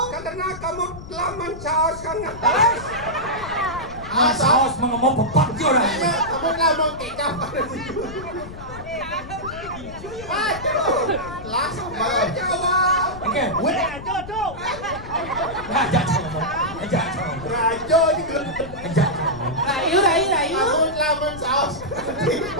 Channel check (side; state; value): left; noise; rumble, 13 dB below the sound